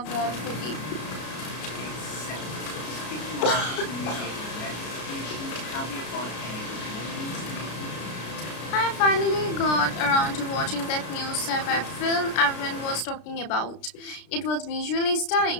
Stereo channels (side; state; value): right; late; 33 ms